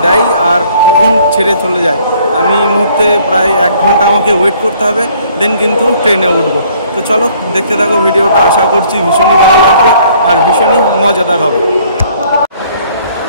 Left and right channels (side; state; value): both; inverted; correlation -0.60